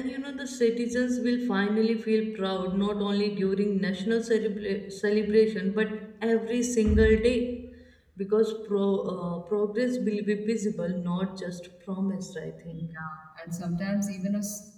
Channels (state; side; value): identical; both; correlation 1.00